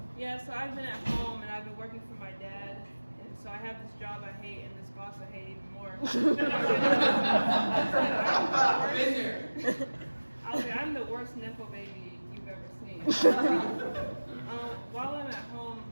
Yeah, so I've been at home and I've been working for my dad, and so I have this job I hate and this boss I hate even more. I was like, I'm the worst nepo baby you've ever seen. While I'm at home,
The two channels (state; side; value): inverted; both; correlation -1.00